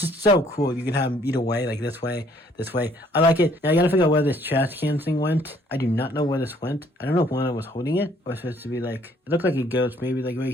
so cool. You can have them either way, like this way. I like it. Now I gotta figure out where this trash can thing went. I do not know where this went. I don't know if one was holding it, or it's supposed to be like, it looked like it goes maybe like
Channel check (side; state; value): both; normal; correlation 0.62